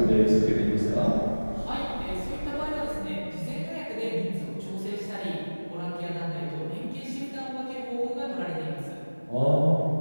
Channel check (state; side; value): inverted; both; correlation -1.00